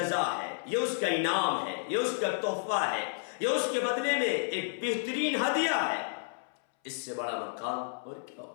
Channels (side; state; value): right; silent; 57 dB below the other